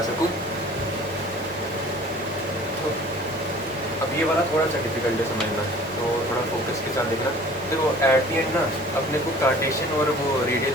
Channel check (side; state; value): both; normal; correlation 0.48